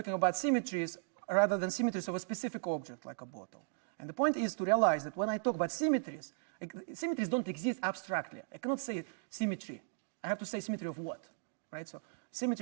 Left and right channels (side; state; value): left; silent; digital silence